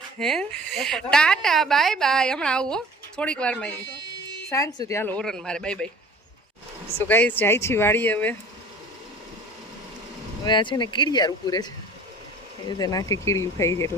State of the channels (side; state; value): both; normal; correlation 0.46